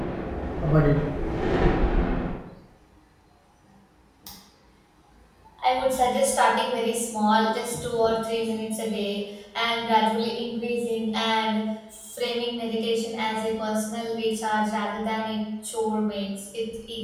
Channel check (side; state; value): both; identical; correlation 1.00